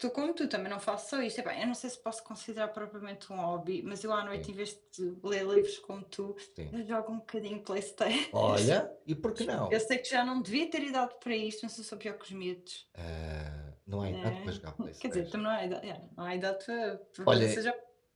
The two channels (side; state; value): both; identical; correlation 1.00